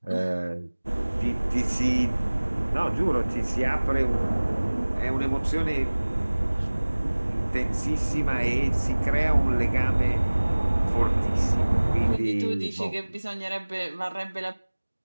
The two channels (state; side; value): inverted; both; correlation -1.00